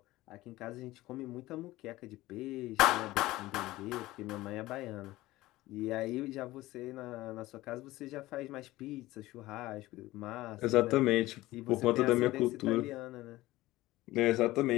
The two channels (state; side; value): quieter; right; 17.7 dB